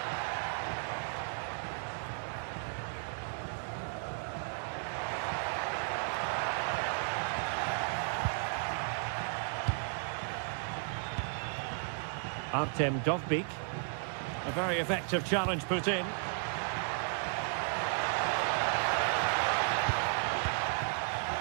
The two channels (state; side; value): silent; left; 55 dB below the other